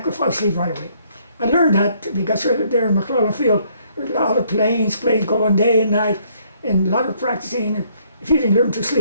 fall asleep right away. I learned that because there in McClellan Field, there's a lot of planes going day and night, and a lot of practicing. If you didn't learn to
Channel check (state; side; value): inverted; both; correlation -0.67